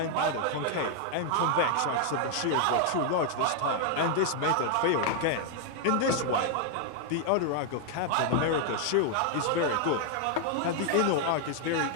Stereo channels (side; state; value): both; different; correlation 0.00